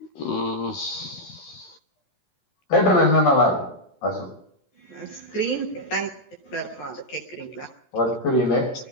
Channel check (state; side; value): late; right; 13 ms